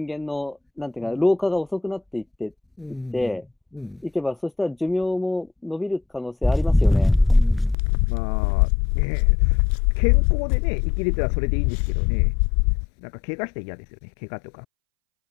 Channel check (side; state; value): right; drops out; at 7.8 s